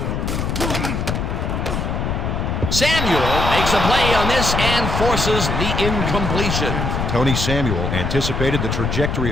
Samuel makes a play on this and forces the incompletion. Tony Samuel anticipated the trajectory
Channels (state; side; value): noise; left; rumble, 1 dB below the sound